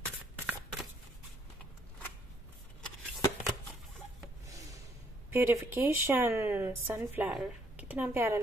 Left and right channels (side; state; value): both; normal; correlation 0.68